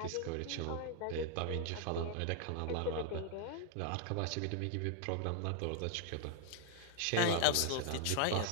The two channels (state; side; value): different; both; correlation 0.00